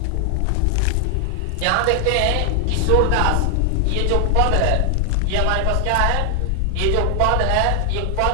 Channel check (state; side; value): different; both; correlation 0.00